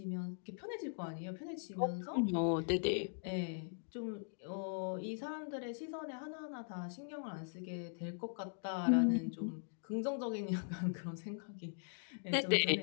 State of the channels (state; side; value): silent; right; digital silence